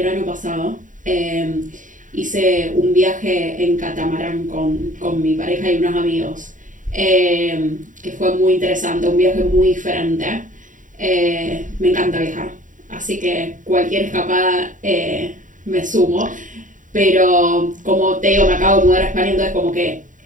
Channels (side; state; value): left; late; 0.38 ms